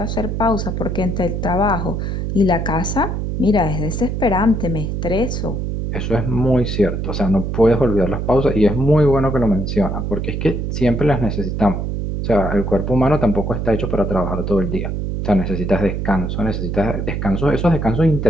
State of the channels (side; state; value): right; noise; hum, 2 dB below the sound